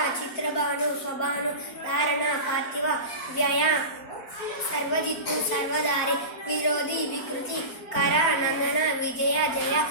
చిత్రభాను, స్వభాను, ధారణ, పార్థివ, వ్యయ, సర్వజిత్తు, సర్వధారి, విరోధి, వికృతి, కర, నందన, విజయ, జయ,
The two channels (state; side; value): late; right; 4.5 ms